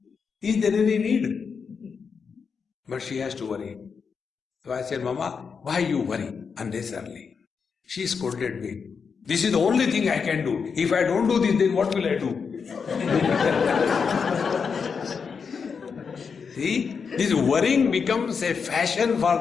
Is there any need? But she has to worry. So I said, Mama, why you worry unnecessarily? She scolded me. This is the only thing I can do. If I don't do this, then what will I do? See, this worrying becomes a fashion for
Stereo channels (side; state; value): right; quieter; 5.8 dB